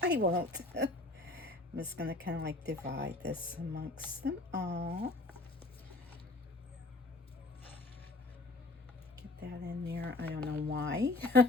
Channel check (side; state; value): right; quieter; 3.1 dB